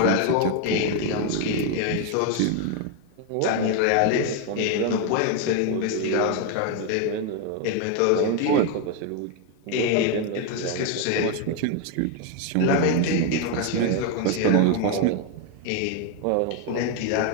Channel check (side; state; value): both; different; correlation 0.01